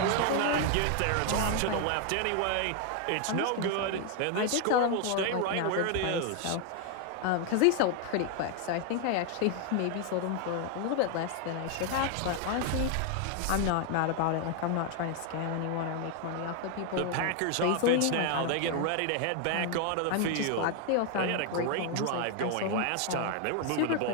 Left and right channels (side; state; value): both; different; correlation 0.00